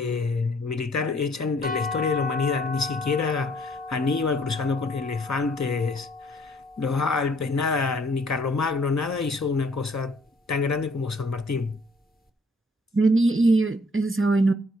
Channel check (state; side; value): normal; both; correlation 0.61